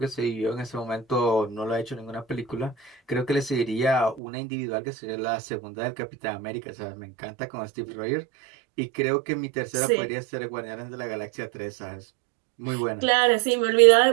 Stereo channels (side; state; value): left; drops out; at 4.2 s